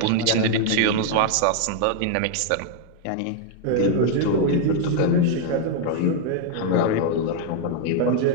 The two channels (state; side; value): different; both; correlation 0.00